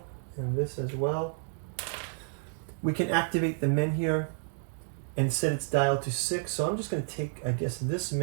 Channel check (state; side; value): silent; left; digital silence